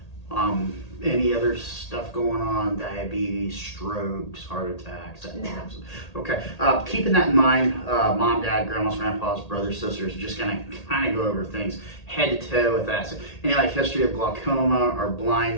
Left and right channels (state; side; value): late; right; 1.8 ms